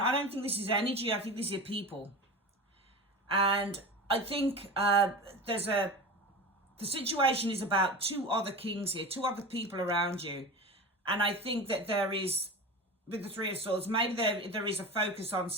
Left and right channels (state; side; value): normal; both; correlation 0.30